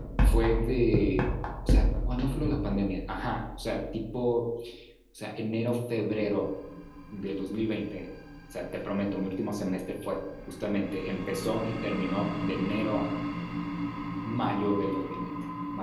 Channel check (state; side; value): identical; both; correlation 1.00